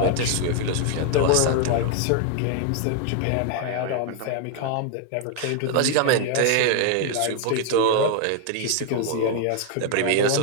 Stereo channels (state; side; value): different; both; correlation 0.00